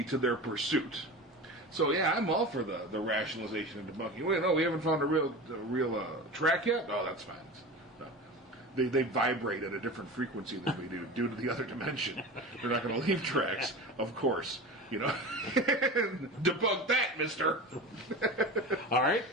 to their pursuit. So yeah, I'm all for the rationalization and debunking. Wait, no, we haven't found a real track yet. Oh, that's fine. No. They vibrate at a different frequency than we do due to the other dimension. They're not going to leave tracks, of course. Debunk that, mister. All right.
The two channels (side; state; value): both; normal; correlation 0.30